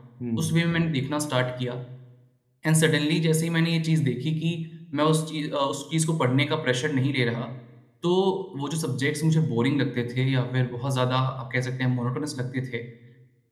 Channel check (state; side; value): identical; both; correlation 1.00